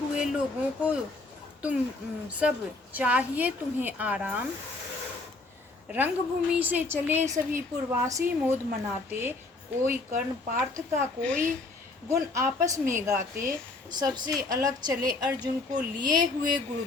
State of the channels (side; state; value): right; quieter; 3.4 dB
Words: लोगों को तुम सब चाहिए तुम्हें आराम। रंगभूमि से चले सभी पुरवासी मोद मनाते, कोई कर्ण पार्थ का कोई गुण आपस में गाते। सबसे अलग चले अर्जुन को लिए हुए